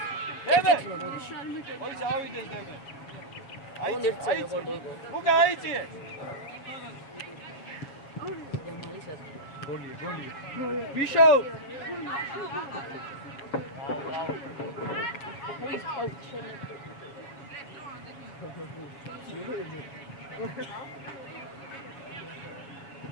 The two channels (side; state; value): right; late; 7.3 ms